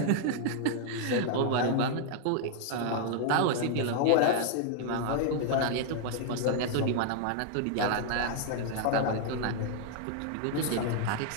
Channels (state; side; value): different; both; correlation 0.00